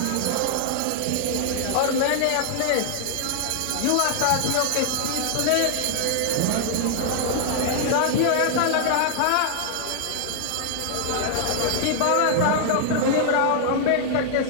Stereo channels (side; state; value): both; different; correlation 0.00